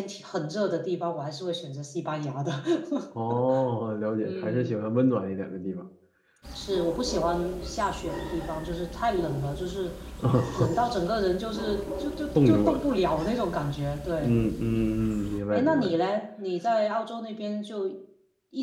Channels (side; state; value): both; identical; correlation 1.00